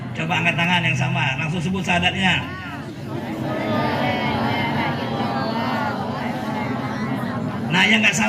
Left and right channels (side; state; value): both; identical; correlation 1.00